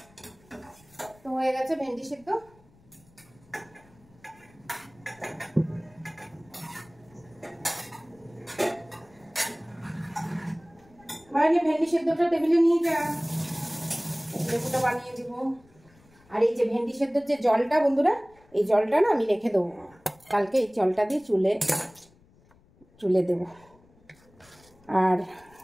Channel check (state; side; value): noise; left; rumble, 29 dB below the sound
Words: তো হয়ে গেছে ভেন্ডি সিদ্ধ। ভেন্ডি সেদ্ধটা টেবিলে নিয়ে যা, লেবুটা বানিয়ে দিব। আর এই যে ভেন্ডি সেদ্ধর যে জলটা বন্ধুরা, এই জলটা না আমি রেখে দেবো, কালকে এই জলটা দিয়ে চুলে দেব। আর